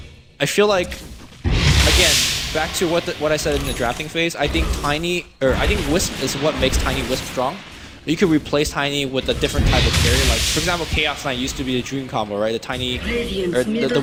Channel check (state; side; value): identical; both; correlation 1.00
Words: I feel like, again, back to what I said in the drafting phase, I think Wisp is what makes Tiny Wisp strong. You could replace Tiny with a different type of carry, like, for example, Chaos Knight used to be the Dream combo, right? The Tiny, or the